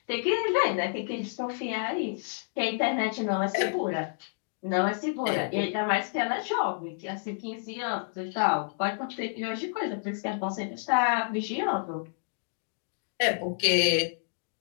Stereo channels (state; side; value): silent; right; digital silence